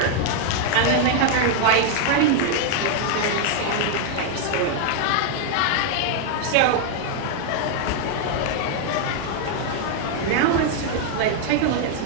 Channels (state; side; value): different; both; correlation 0.00